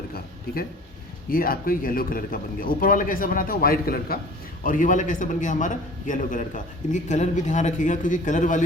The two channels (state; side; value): normal; both; correlation 0.44